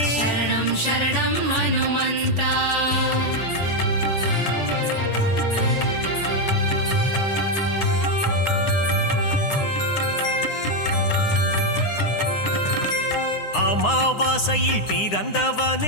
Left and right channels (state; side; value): late; right; 9.8 ms